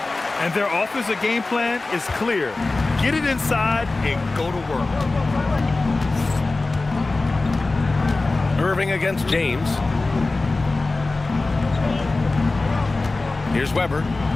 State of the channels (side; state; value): right; quieter; 3.3 dB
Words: And their offensive game plan is clear. Get it inside and go to work. Irving against James. Here's Weber,